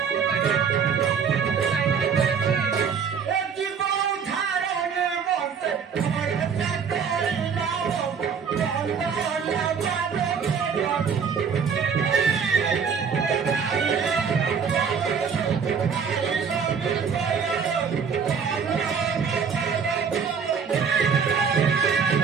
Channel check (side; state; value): left; quieter; 6.4 dB